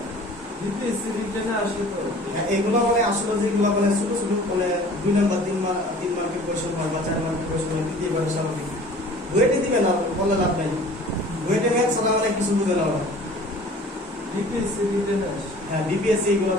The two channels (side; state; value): both; normal; correlation 0.47